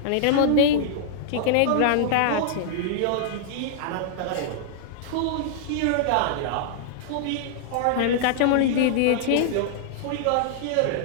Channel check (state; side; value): different; both; correlation -0.01